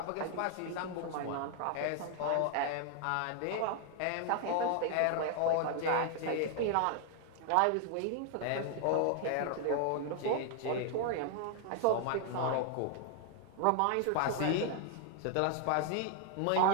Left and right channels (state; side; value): different; both; correlation 0.00